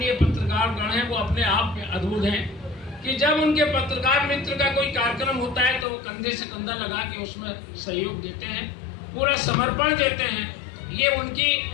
पत्रकार गण हैं वो अपने आप में अद्भुत हैं कि जब उनके पत्रकार मित्र का कोई कार्यक्रम होता है तो वो कंधे से कंधा लगा के उसमें सहयोग देते हैं, पूरा समर्पण देते हैं। ये उनकी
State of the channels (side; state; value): right; drops out; at 5.9 s